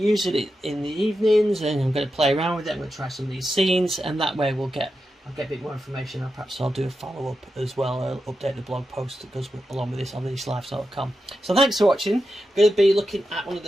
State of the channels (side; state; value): both; normal; correlation 0.89